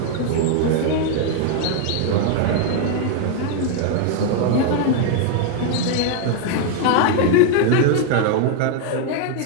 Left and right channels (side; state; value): both; different; correlation 0.00